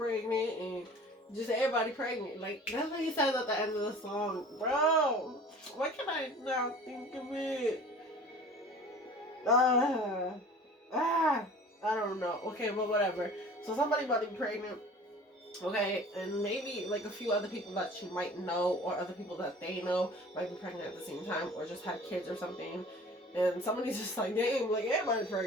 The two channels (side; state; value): both; normal; correlation 0.44